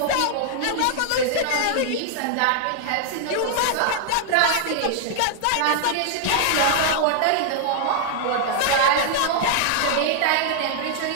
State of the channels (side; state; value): both; different; correlation -0.01